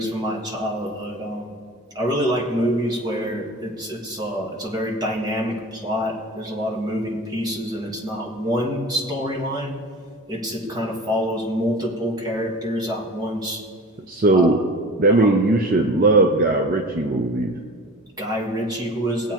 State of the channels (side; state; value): both; normal; correlation 0.38